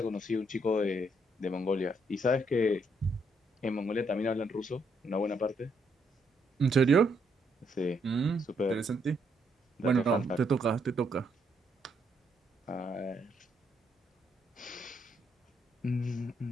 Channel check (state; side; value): normal; both; correlation 0.74